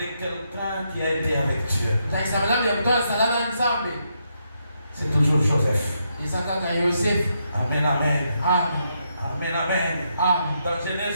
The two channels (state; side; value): inverted; both; correlation -0.79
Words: quelqu'un qui a été avec Dieu. C'est toujours Joseph. Amen, amen. Amen, amen. Dans